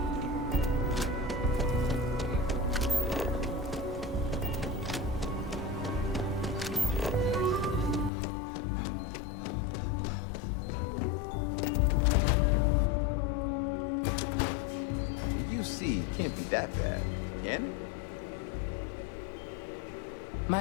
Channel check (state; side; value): drops out; right; at 8.1 s